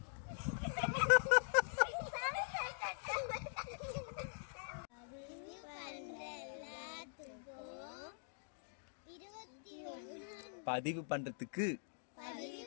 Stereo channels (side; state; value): right; silent; digital silence